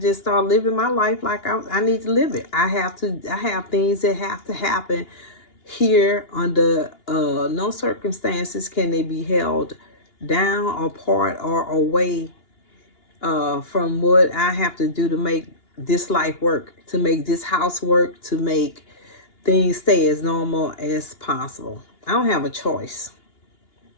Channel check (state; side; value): late; right; 2.8 ms